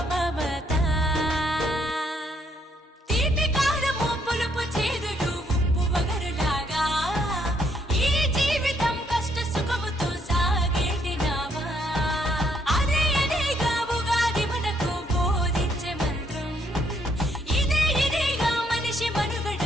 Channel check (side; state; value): both; normal; correlation 0.71